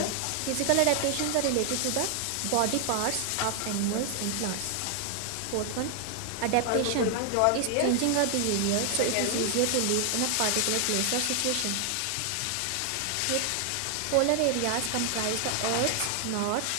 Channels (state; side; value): different; both; correlation 0.00